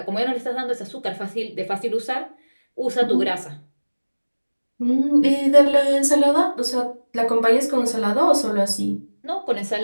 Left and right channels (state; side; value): inverted; both; correlation -1.00